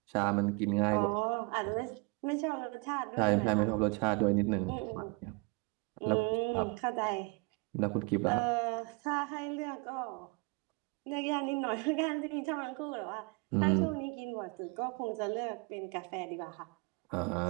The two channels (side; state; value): left; quieter; 29.6 dB